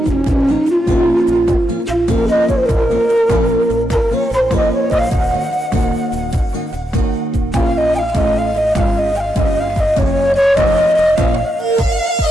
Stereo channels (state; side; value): normal; both; correlation 0.84